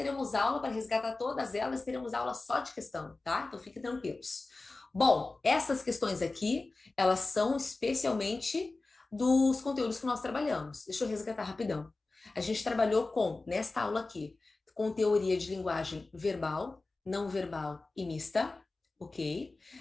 aula para resgatar todas elas, teremos aula só de questão, tá? Então fiquem tranquilos. Bom, essas questões aqui, elas são especialmente dos conteúdos que nós trabalhamos. Deixa eu resgatar rapidão. A gente trabalhou nesta aula aqui, com teoria de linguagem verbal, não verbal e mista, ok?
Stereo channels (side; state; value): right; quieter; 3.4 dB